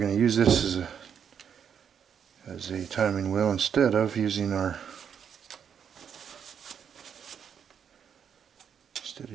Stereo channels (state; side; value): quieter; left; 7.8 dB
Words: to use this as a timing wheel instead of using a